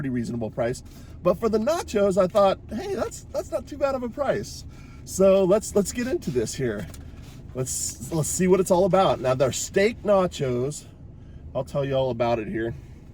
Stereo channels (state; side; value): identical; both; correlation 1.00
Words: reasonable price. But for the nachos, I thought, hey, that's not too bad of a price. So let's get into this here. Let's see what it's all about. Now, they're steak nachos. I'll tell you all about it here.